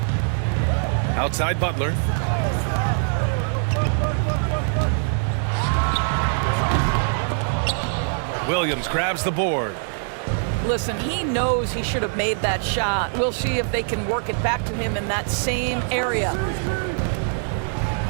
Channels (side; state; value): left; silent; 63 dB below the other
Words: Outside Butler. Williams grabs the board. Listen, he knows he should have made that shot. We'll see if they can work it back to him in that same area.